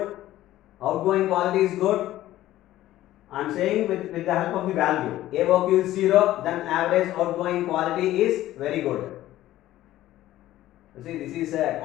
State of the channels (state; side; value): quieter; right; 14.6 dB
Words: Outgoing quality is good. I am saying with the help of the value. AOQ is 0, then average outgoing quality is very good. You see, this is a